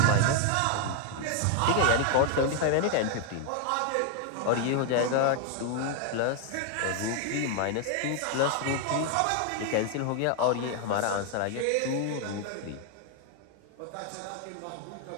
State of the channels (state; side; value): different; both; correlation 0.00